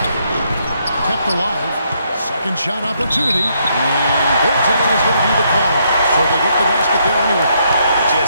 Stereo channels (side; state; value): both; inverted; correlation -0.74